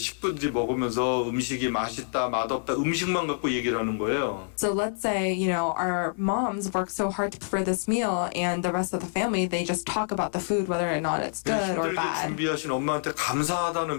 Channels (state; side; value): silent; right; 60 dB below the other